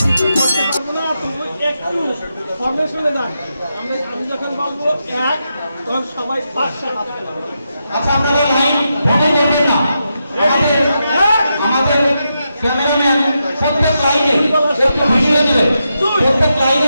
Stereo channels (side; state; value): both; inverted; correlation -0.86